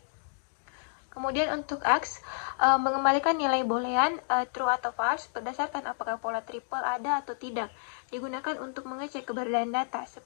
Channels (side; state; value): right; silent; digital silence